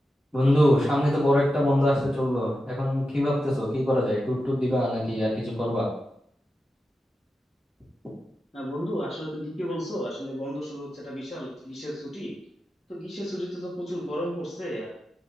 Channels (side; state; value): both; normal; correlation 0.90